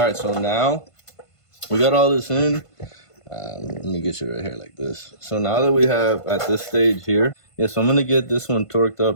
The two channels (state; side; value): late; right; 1.5 ms